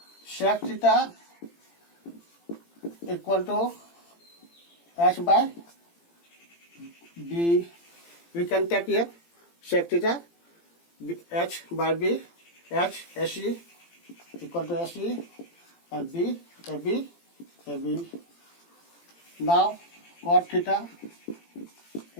Sec theta equal to H by B. We can take here sec theta H by B, H AC equal to AC and B AB. Now cot theta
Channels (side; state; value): right; late; 18 ms